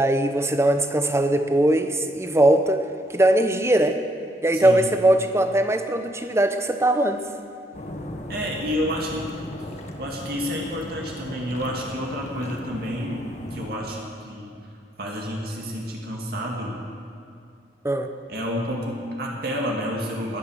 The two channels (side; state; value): both; normal; correlation 0.72